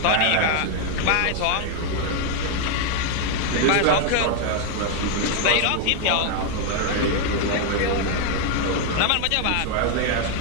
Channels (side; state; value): both; different; correlation 0.00